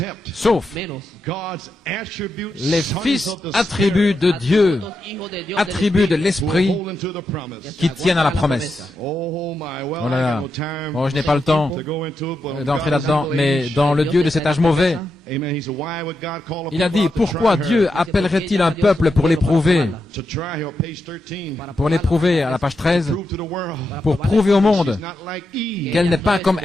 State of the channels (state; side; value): normal; both; correlation 0.86